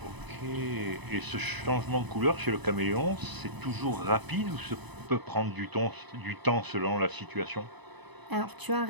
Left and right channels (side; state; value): left; late; 1.0 ms